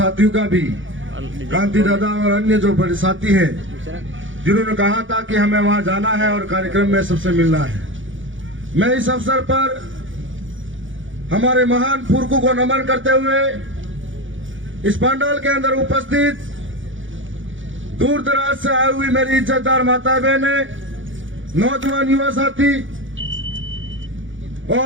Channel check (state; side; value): late; left; 0.56 ms